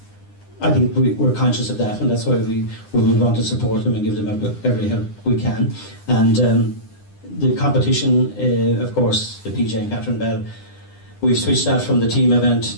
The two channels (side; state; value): right; late; 9.9 ms